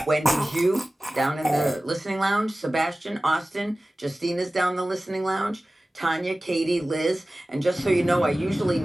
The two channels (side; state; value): both; normal; correlation 0.97